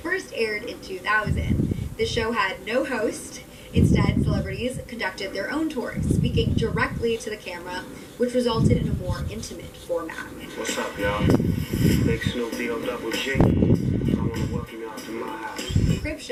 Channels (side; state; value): both; identical; correlation 1.00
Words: aired in 2000. The show had no host. Instead, celebrities conducted their own tours, speaking directly to the camera, which resulted in a more intimate format. What's up, y'all? Big Snoop D-O double G. I want to welcome y'all to my house. Crib